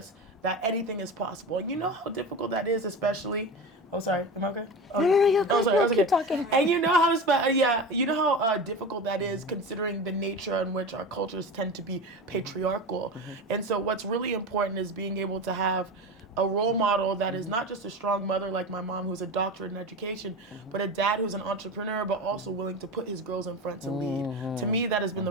that anything is possible. And you know how difficult that is, especially. Oh, sorry. Am I okay? Oh, No, you're oh, good. sorry. I was Keep okay. talking. And you know how difficult that is, considering the nature in which our cultures tend to be patriarchal. And so, what's really important is being able to have a role model that is not just a strong mother like my mom, who's a doctorate in education, but a dad who's an entrepreneur, but also willing to put his girls in front to lead. To me, that has been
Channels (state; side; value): normal; both; correlation 0.27